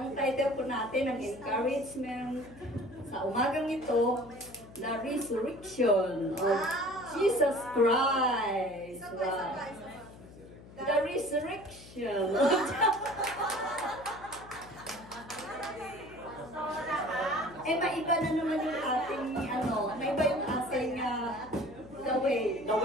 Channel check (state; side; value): noise; left; hum, 19 dB below the sound